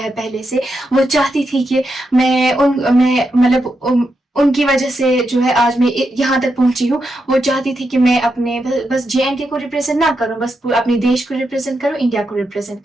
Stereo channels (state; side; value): normal; both; correlation 0.85